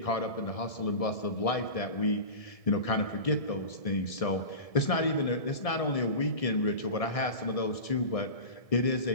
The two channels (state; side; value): late; right; 1.7 ms